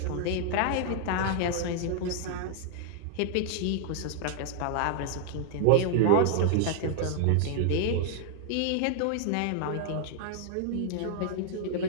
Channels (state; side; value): different; both; correlation -0.01